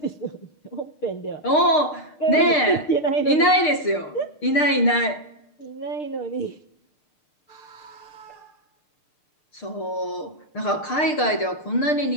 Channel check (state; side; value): late; right; 6.6 ms